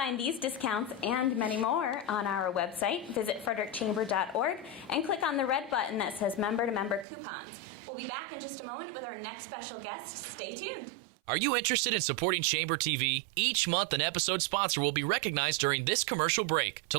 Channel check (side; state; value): left; drops out; at 7.1 s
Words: these discounts and many more on our website. Visit frederickchamber.org and click on the red button that says member-to-member coupons. We'll be back in just a moment with our next special guest. Stay tuned. Are you interested in supporting Chamber TV? Each month, an episode sponsor will be recognized during this commercial break. To